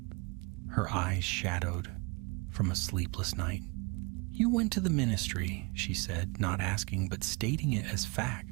her eyes shadowed from a sleepless night. "You went to the Ministry," she said, not asking but stating it as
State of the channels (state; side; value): quieter; left; 29.0 dB